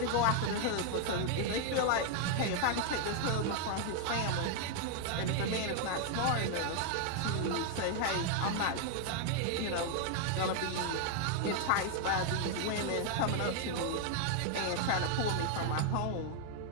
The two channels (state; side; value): different; both; correlation 0.00